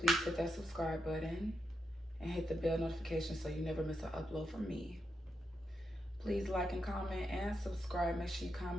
hit that subscribe button and hit the bell notification so you never miss an upload from me. Please like and comment and subscribe. Make sure you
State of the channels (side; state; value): both; normal; correlation 0.85